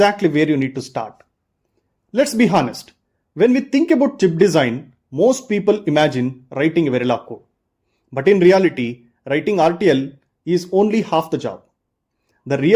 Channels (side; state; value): both; identical; correlation 1.00